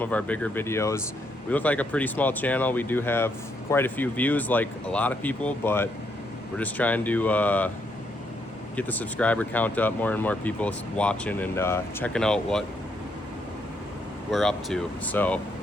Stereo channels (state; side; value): normal; both; correlation 0.75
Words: of our bigger videos. We look like a pretty small channel. We do have quite a few views, like a lot of people, but we're just trying to get the subscriber count up, more and more people watching and checking out what we're up to. So,